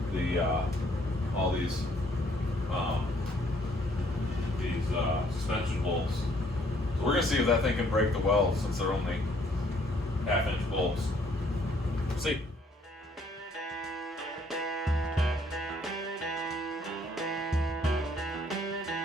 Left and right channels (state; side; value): normal; both; correlation 0.64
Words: the all these suspension bolts. So we're gonna see if that thing can break the weld since they're only 1/2-inch bolts. See.